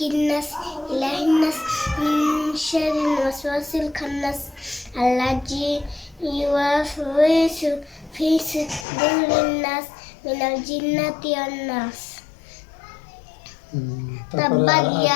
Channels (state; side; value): drops out; right; at 8.8 s